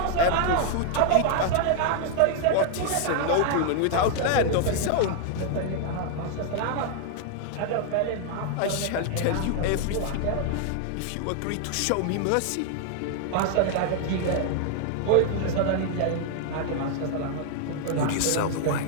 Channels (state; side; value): different; both; correlation 0.00